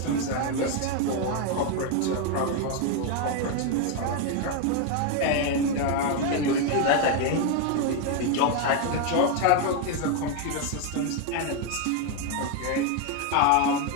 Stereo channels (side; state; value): both; different; correlation 0.01